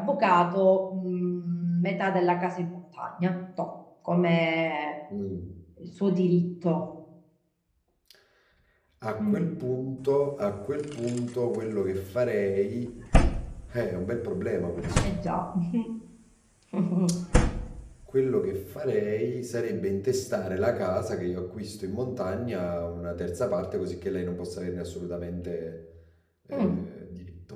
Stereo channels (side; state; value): both; identical; correlation 1.00